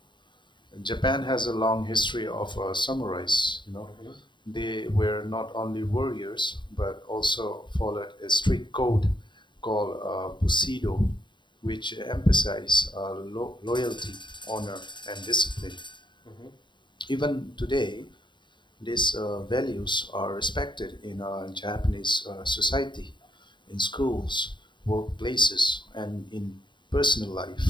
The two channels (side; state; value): right; late; 0.23 ms